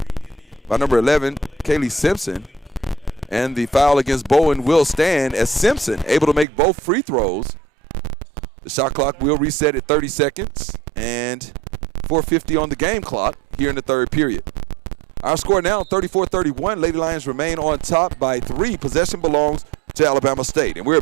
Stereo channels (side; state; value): left; drops out; at 6.5 s